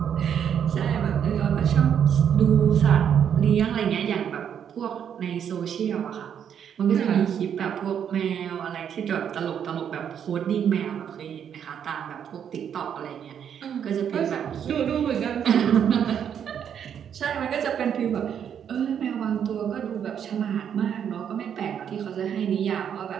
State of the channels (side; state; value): left; quieter; 8.5 dB